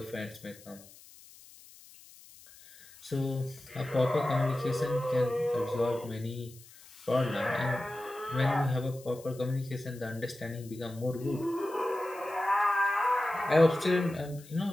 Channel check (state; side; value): noise; left; hiss, 22 dB below the sound